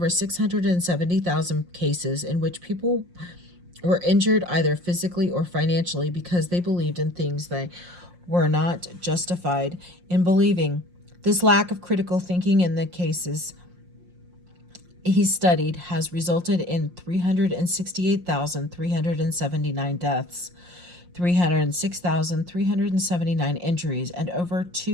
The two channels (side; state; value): left; late; 5.6 ms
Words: 670,000 cases in which people were injured either physically or financially because they believed in things they were not justified in believing. This lack of critical thinking in the cases he studied has resulted in 368,379 deaths, 306,379 injuries, and over